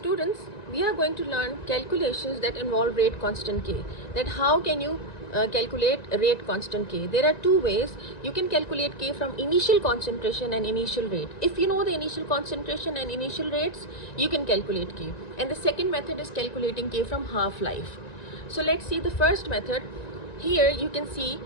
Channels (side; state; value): right; late; 1.9 ms